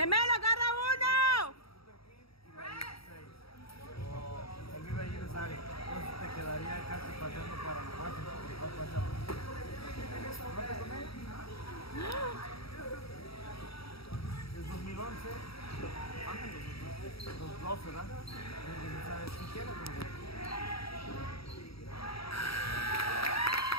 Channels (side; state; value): right; late; 0.76 ms